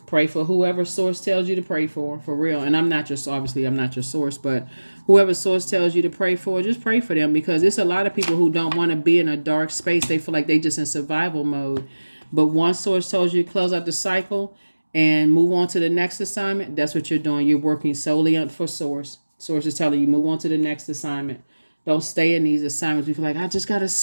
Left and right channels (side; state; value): both; inverted; correlation -1.00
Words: Pray for whoever source tells you to pray for real. And I'm not your source, but whoever source tells you to pray for, just pray for them, because there's a lot of people who don't want to be in a dark space. They feel like they just in survival mode. But one source tells you to close out the cycle and move on to the next assignment. That's what you're doing. You're working solely for source. Source is telling you move on to the next assignment. Don't stay in these assignments. You feel like, I just got to